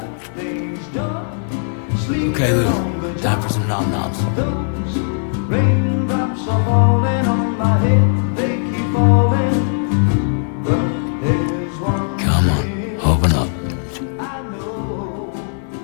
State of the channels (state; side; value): silent; right; 62 dB below the other